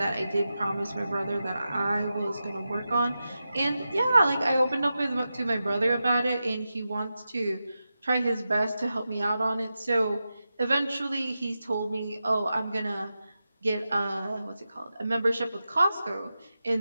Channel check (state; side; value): inverted; both; correlation -0.91